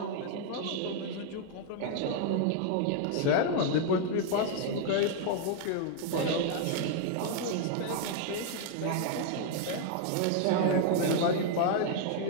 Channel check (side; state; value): both; different; correlation 0.00